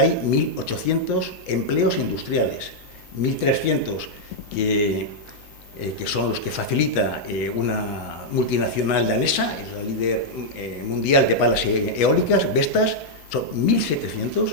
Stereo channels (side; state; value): left; late; 12 ms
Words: 1.800 empleos industriales, 1.300 que son los que facilita una multinacional danesa, es la líder mundial de palas eólicas, Vestas, son 1.700,